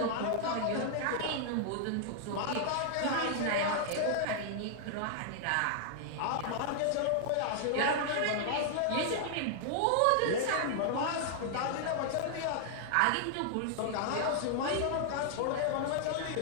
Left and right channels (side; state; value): both; different; correlation -0.01